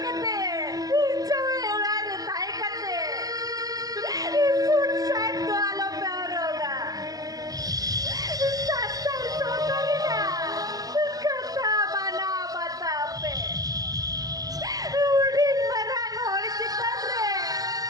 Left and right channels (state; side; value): late; left; 0.18 ms